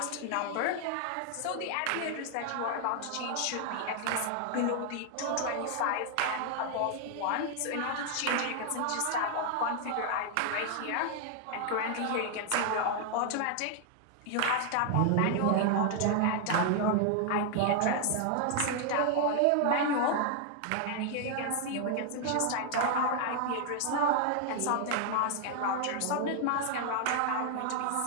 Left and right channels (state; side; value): different; both; correlation 0.00